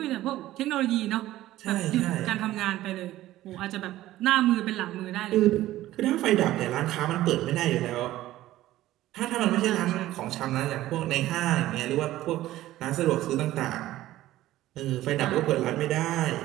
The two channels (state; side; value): quieter; left; 15.1 dB